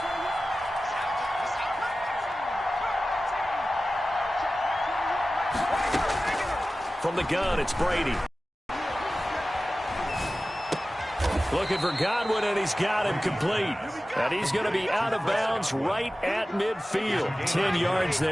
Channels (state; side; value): normal; both; correlation 0.96